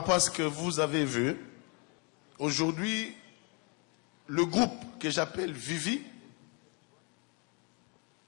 à ce que vous avez vu. Aujourd'hui, le groupe que j'appelle Vivi,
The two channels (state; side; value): quieter; right; 33.3 dB